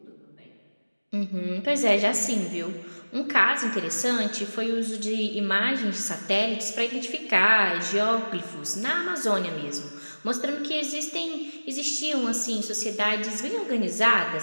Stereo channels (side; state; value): both; inverted; correlation -1.00